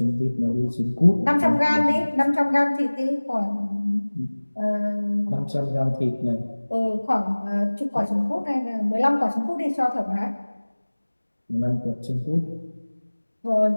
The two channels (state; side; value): inverted; both; correlation -1.00